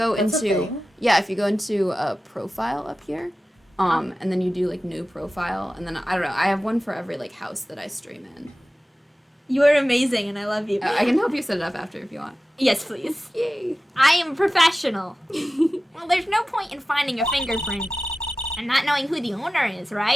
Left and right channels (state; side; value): normal; both; correlation 0.95